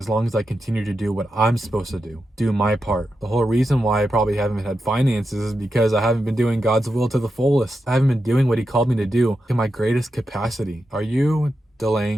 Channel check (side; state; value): both; normal; correlation 0.88